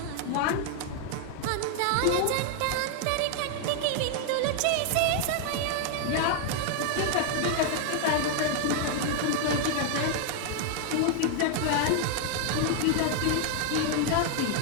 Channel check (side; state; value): both; different; correlation 0.00